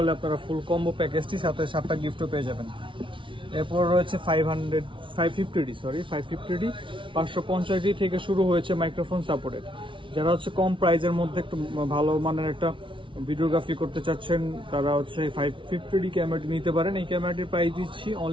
আপনারা ফুল কম্বো প্যাকেজটি সাথে 7টা গিফটও পেয়ে যাবেন। এরপর রয়েছে 550D 550D থেকে শুরু হয়েছে মাইক্রোফোন সাপোর্টেড। যারা হচ্ছে কম প্রাইজের মধ্যে একটু ভালো মানের একটা ভিডিওগ্রাফি করতে চাচ্ছেন তারা হচ্ছে 550D ক্যামেরাটি নিতে পারেন। এই ক্যামেরাটির প্রাইস দিচ্ছি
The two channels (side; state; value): left; late; 0.25 ms